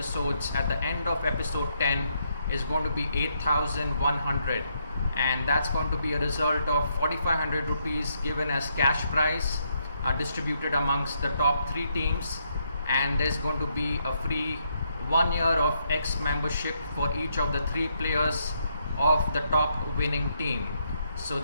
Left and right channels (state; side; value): inverted; both; correlation -0.76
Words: at the end of episode 10 is going to be 8,100, and that's going to be a result of 4,500 rupees given as cash prize, distributed amongst the top 3 teams, and there's going to be a free 1 year of X membership for each of the 3 players of the top winning team. So